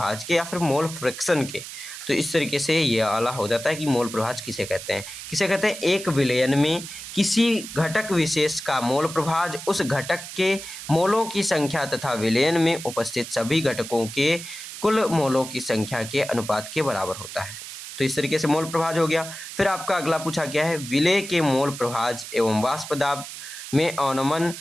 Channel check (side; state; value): right; noise; hiss, 11 dB below the sound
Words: के, या फिर मोल फ्रैक्शन के। तो इस तरीके से ये आला हो जाता है कि मोल प्रभाज किसे कहते हैं? किसे कहते हैं? एक विलयन में किसी घटक विशेष का मोल प्रभाज उस घटक के मोलों की संख्या तथा विलयन में उपस्थित सभी घटकों के कुल मोलों की संख्या के अनुपात के बराबर होता है। तो इस तरीके से मोल प्रभाज हो गया। फिर आपका अगला पूछा गया है, विलेय के मोल प्रभाज एवं वाष्प दाब में अवनमन